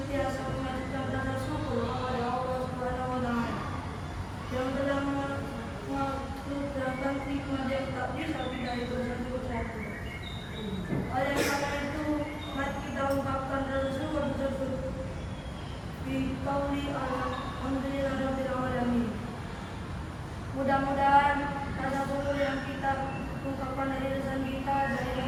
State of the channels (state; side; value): identical; both; correlation 1.00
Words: mengajukan rasa syukur kepada Allah Subhanahu wa Ta'ala yang telah menganugerahkan nikmat yang tak bisa kita hitung satu-satu. Oleh karena itu, mari kita ungkapkan rasa syukur tersebut di qauli alhamdulillah rabbil alamin. Mudah-mudahan rasa syukur yang kita ungkapkan dari lisan kita, dari